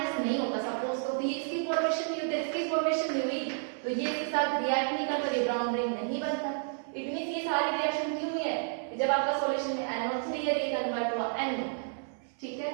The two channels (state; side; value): silent; left; 57 dB below the other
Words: नहीं होता सपोज, तो ये इसकी फॉर्मेशन नहीं होती, इसकी फॉर्मेशन नहीं हुई, तो ये इसके साथ रिएक्ट नहीं करता, ये ब्राउन रिंग नहीं बनता। इट मींस ये सारी रिएक्शन क्यों हुई है, जब आपका सॉल्यूशन में NO3 है, ये कन्वर्ट हुआ NO। ठीक है,